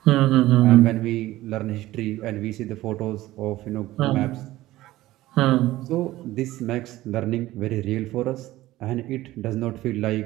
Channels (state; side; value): quieter; left; 16.4 dB